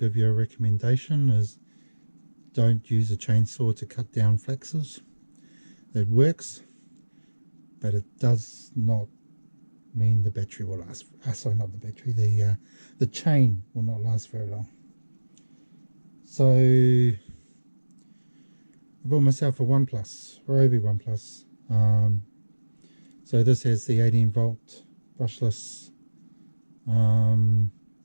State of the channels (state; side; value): inverted; both; correlation -1.00